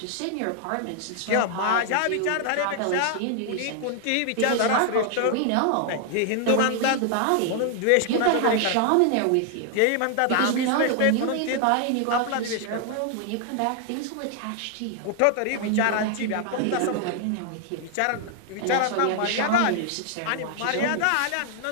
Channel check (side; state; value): both; different; correlation 0.00